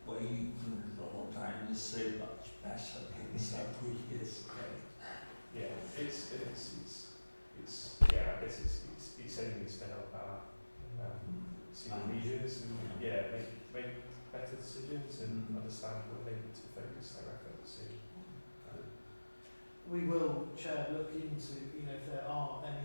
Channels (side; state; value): both; inverted; correlation -1.00